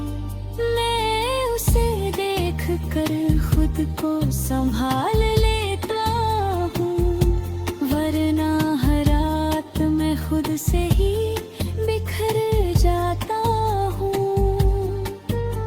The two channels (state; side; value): identical; both; correlation 1.00